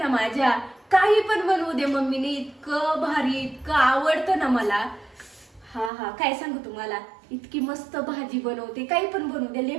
माझ्या. काही पण बनवू दे मम्मीने, इतकं भारी, इतकं आवडतं ना मला. हा काय सांगू तुम्हाला, इतकी मस्त भाजी बनवते, काही पण बनवू दे, लय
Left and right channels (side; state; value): left; drops out; at 5.9 s